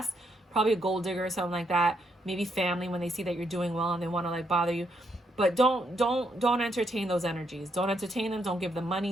probably a gold digger or something like that. Maybe family, when they see that you're doing well and they want to like bother you. But don't entertain those energies. Don't entertain them. Don't give them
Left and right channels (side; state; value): both; normal; correlation 0.76